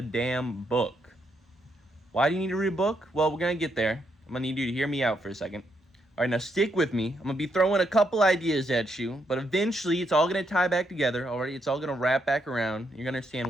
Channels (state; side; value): normal; both; correlation 0.77